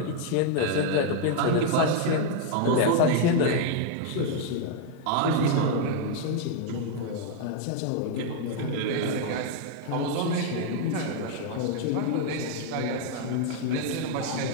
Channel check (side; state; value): both; different; correlation 0.00